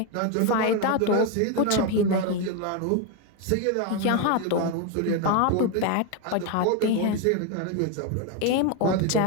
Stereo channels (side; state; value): both; different; correlation 0.02